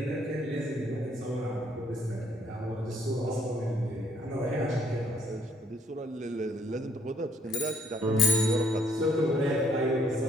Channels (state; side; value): normal; both; correlation 0.64